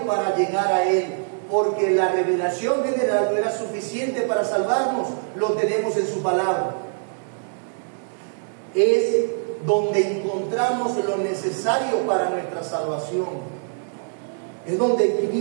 para llegar a Él, porque la revelación general no era suficiente para salvarnos, lo tenemos en su palabra. Es donde encontramos lo necesario para nuestra salvación. Es donde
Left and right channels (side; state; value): left; silent; digital silence